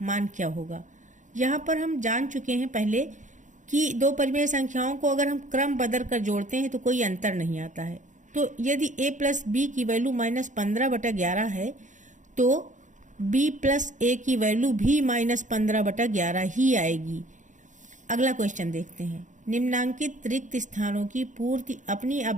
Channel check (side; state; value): left; late; 0.36 ms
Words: मान क्या होगा। यहाँ पर हम जान चुके हैं पहले कि दो परिमेय संख्याओं को अगर हम क्रम बदल कर जोड़ते हैं तो कोई अंतर नहीं आता है। तो यदि a प्लस बी की वैल्यू -15/11 है तो b प्लस a की वैल्यू भी -15/11 ही आएगी। अगला क्वेश्चन देखते हैं। निम्नांकित रिक्त स्थानों की पूर्ति अपनी